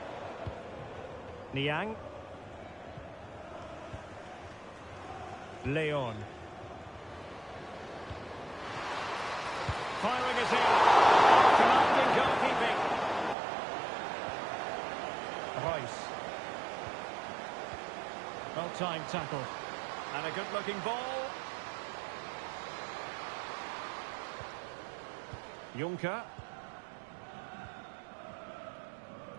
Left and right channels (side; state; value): left; drops out; at 13.4 s